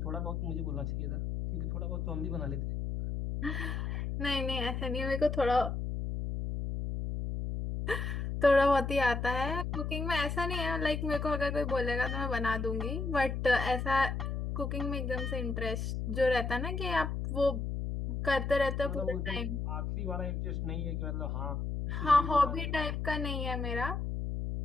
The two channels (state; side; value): noise; left; hum, 2 dB below the sound